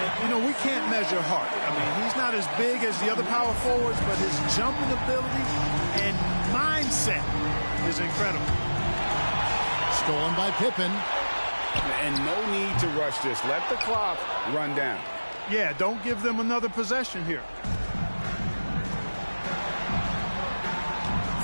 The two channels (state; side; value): inverted; both; correlation -1.00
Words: you know, we can't measure heart. I mean, he's not as big as the other power forwards, but his jumping ability and mindset is incredible. Stolen by Pippen. And no need to rush this. Let the clock run down. Yeah, don't give them another possession here.